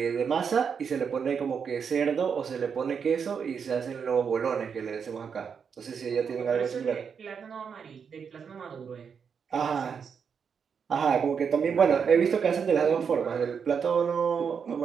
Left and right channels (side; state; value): left; quieter; 6.6 dB